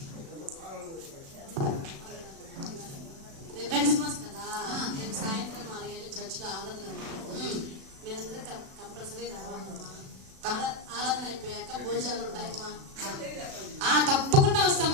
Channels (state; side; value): late; left; 36 ms